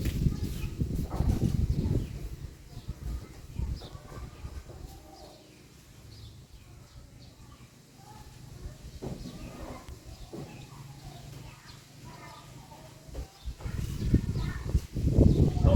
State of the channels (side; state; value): both; identical; correlation 1.00